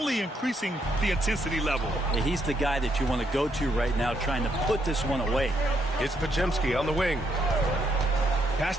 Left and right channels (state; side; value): normal; both; correlation 0.75